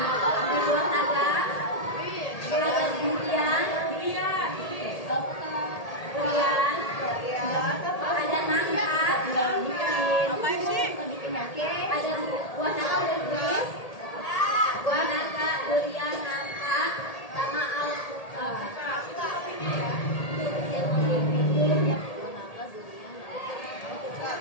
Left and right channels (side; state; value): right; late; 1.8 ms